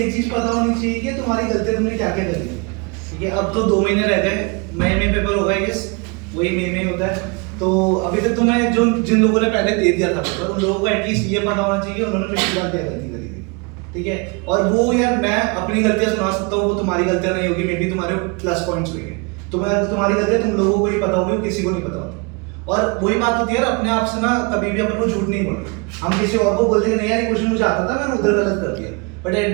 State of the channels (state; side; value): quieter; left; 30.5 dB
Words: चीज पता होनी चाहिए कि तुम्हारी गलतियां तुमने क्या क्या करी। ठीक है, अब तो 2 महीने रह गए, मई में पेपर होगा आई गेस, वही मई में होता है। तो अभी तक तुम्हें जो जिन लोगों ने पहले दे दिया था पेपर, उन लोगों को एटलीस्ट ये पता होना चाहिए उन्होंने पिछली बार क्या गलती करी थी। ठीक है, और वो यार मैं अपनी गलतियां सुना सकता हूँ, वो तुम्हारी गलतियां नहीं होगी, मे बी तुम्हारे प्लस पॉइंट्स होंगे। तुम्हारी गलतियां तुम लोगों को ही पता होगी, किसी को नहीं पता होती। और वही बात होती है यार, अपने आप से ना कभी भी अपन को झूठ नहीं बोलना। हम किसी और को बोलते नहीं यार ये क्वेश्चन मुझे आता था, मैंने उधर गलत कर दिया, बट एट